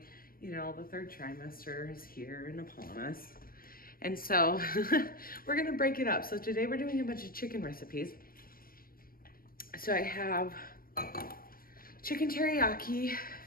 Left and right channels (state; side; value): late; right; 0.42 ms